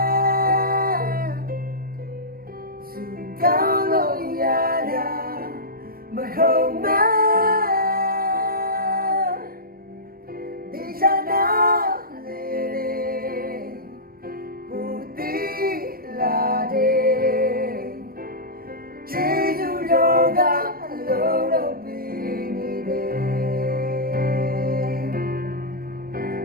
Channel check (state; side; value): late; left; 0.43 ms